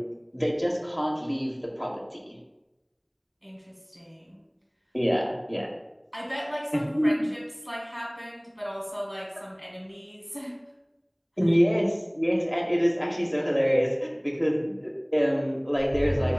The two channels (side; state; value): both; identical; correlation 1.00